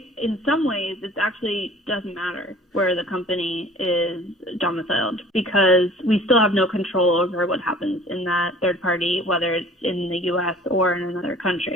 in some ways it actually doesn't matter where the company is domiciled, because we still have no control over what happens in that third party, whether it's in the U.S. or in another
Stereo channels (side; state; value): both; normal; correlation 0.49